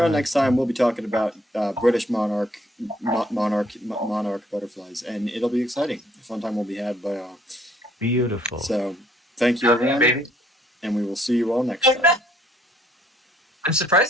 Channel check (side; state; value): both; normal; correlation 0.64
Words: next time. We'll be talking about British monarch butterflies, and it'll be exciting. A fun time will be had by all. Beautiful. So, thank you, everyone, baby. and we will see you all next time. I'm